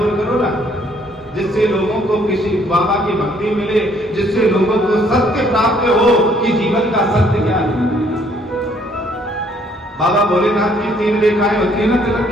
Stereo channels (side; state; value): both; normal; correlation 0.64